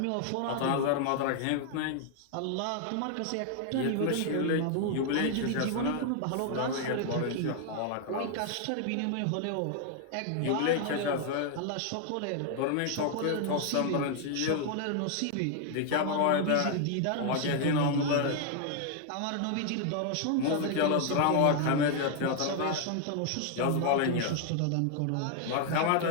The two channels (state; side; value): different; both; correlation 0.00